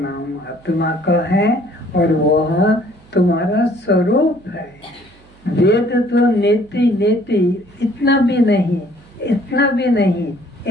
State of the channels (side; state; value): right; noise; hum, 28 dB below the sound